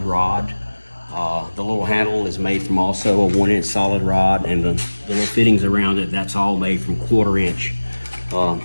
rod. The little handle is made from also a 1-inch solid rod, and the little fittings around it, that's all made from 1/4-inch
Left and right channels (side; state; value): both; inverted; correlation -1.00